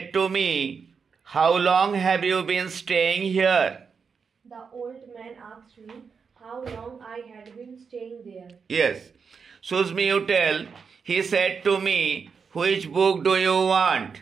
to me, "How long have you been staying here?" The old man asked me how long I had been staying there. Yes. Susmi, you tell. He said to me, "Which book do you want?"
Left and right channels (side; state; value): left; quieter; 5.8 dB